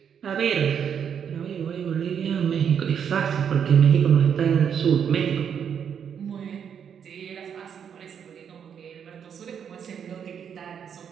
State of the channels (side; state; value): left; quieter; 7.9 dB